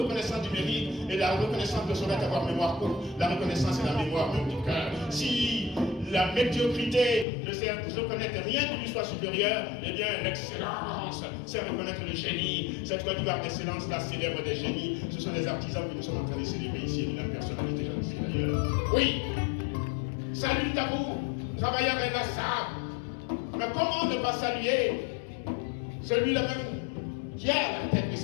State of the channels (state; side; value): drops out; right; at 7.2 s